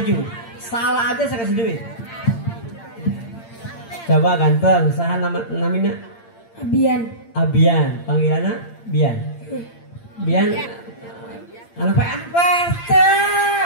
Salah aja saya kasih duit. Coba ganteng, saha namina? Abian, panggilannya Bian. Anak PRT.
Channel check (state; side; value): late; right; 8.7 ms